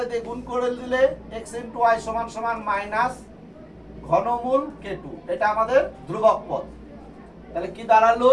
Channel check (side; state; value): both; identical; correlation 1.00